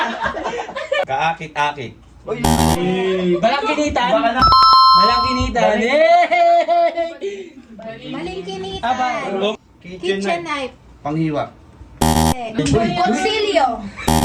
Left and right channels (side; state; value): both; identical; correlation 1.00